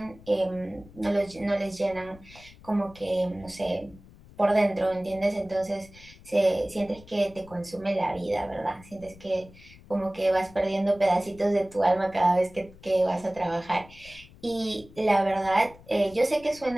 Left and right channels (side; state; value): left; noise; rumble, 22 dB below the sound